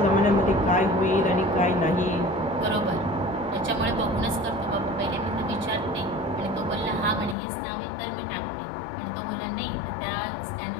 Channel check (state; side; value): drops out; right; at 7.4 s